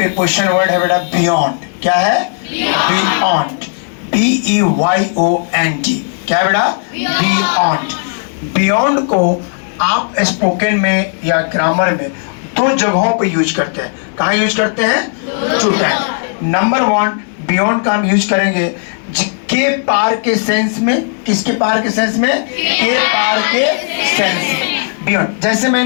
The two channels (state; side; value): silent; right; digital silence